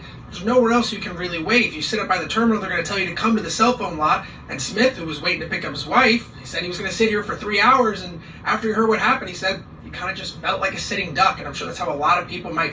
There's nowhere else you can really wait. If you sit up by the terminal, they're going to tell you to come to the cell phone lot. And Smith, who was waiting to pick up his wife, he said he was going to sit here for 3 hours. And after he heard what happened, he said he kind of just felt like a sitting duck. And I'm sure that's how a lot of people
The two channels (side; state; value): both; identical; correlation 1.00